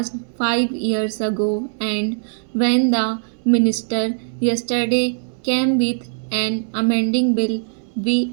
5 years ago, and when the minister yesterday came with an amending bill,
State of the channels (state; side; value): silent; left; 65 dB below the other